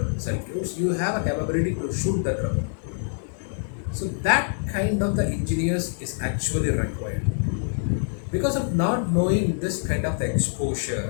circuits, you have a capability to shoot the trouble. So that kind of the engineers is actually required. Because of not knowing this kind of the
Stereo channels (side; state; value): right; silent; 62 dB below the other